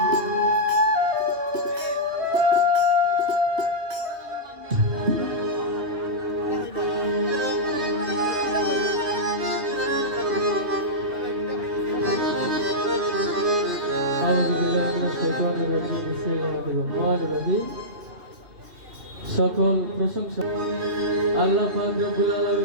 সকল প্রশংসা আল্লাহ পাক রব্বুল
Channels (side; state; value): left; late; 3.2 ms